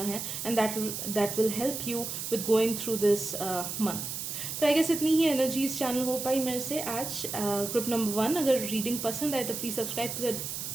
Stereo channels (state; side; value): noise; right; hiss, 5 dB below the sound